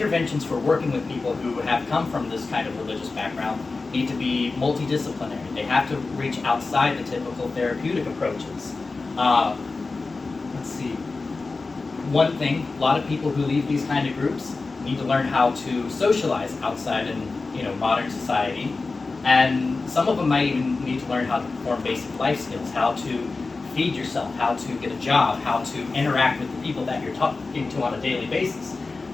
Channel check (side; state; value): right; quieter; 3.8 dB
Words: for working with people who have come from this kind of religious background need to be multidisciplinary. They have to reach outside the typical therapeutic approaches. Let's see. One thing, a lot of people who leave these kind of groups need to learn how to socialize outside in modern society, and some of them might even need to learn how to perform basic life skills, how to feed yourself, how to get a job, how to interact with the people that you're talking to on a daily basis.